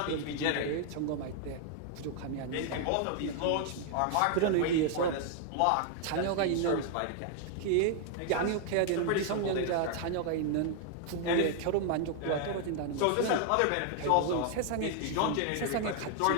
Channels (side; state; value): both; different; correlation 0.00